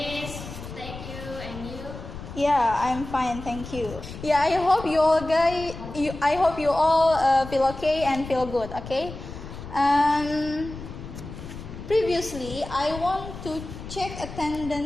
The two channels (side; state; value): left; noise; rumble, 11 dB below the sound